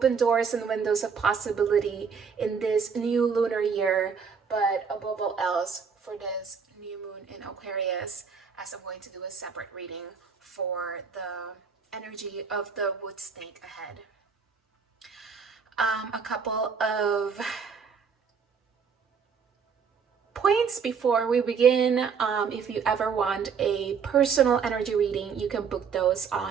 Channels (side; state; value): left; quieter; 6.1 dB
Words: doors and windows of possibility in this new lunar year, but above all else for this new moon in Aquarius, as I'm going to do a separate reading for the energy of the wood snake ahead. A couple of points before we begin. If you ever want a personal energy reading, you can book those